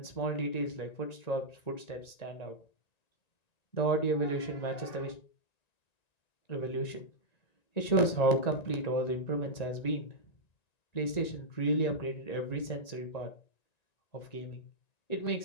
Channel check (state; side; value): late; right; 1.9 ms